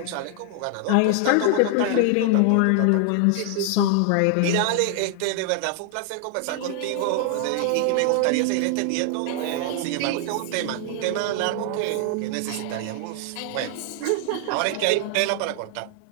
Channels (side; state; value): both; different; correlation 0.00